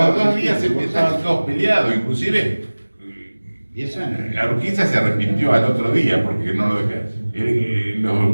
2 días estaban todos peleados, inclusive la Urquiza se arrepintió al otro día porque no lo dejaron.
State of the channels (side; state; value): both; inverted; correlation -1.00